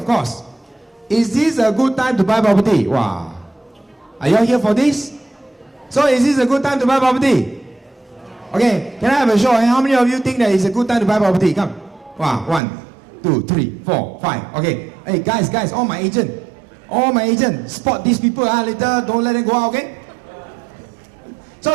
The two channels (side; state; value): left; drops out; at 12.6 s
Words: course, is this a good time to buy property? Wow. Are you all here for this? So is this a good time to buy property? Okay, can I have a show? How many of you think that it's a good time to buy property? Come. Wow, 1, 2, 3, 4, 5. Okay. Hey, guys, all my agent, spot these people. Later, don't let them go out, okay? So